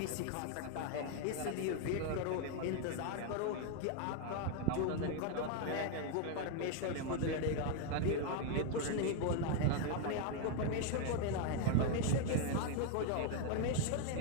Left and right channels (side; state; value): both; different; correlation 0.01